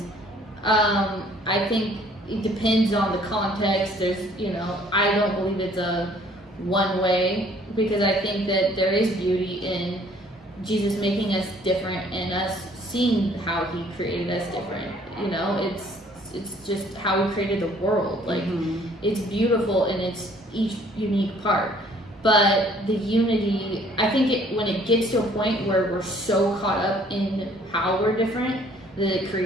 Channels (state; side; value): normal; both; correlation 0.58